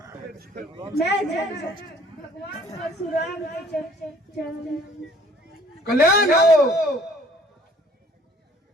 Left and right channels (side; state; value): both; normal; correlation 0.56